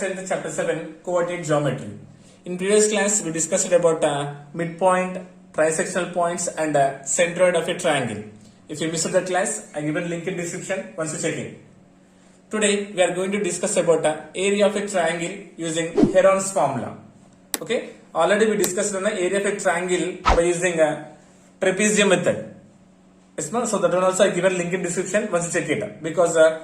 10th chapter 7 coordinate geometry. In previous class we discussed about midpoint, trisectional points and centroid of a triangle. If you missed the class, I given link in description once you check it. Today we are going to discuss about area of a triangle using Heron's formula. Okay, already we discussed on the area of a triangle by using trapezium method. Yes, no? So that one also I given link in description once you check it because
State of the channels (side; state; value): both; identical; correlation 1.00